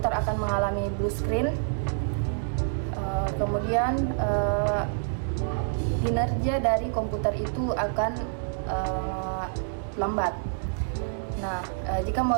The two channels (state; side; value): silent; left; 60 dB below the other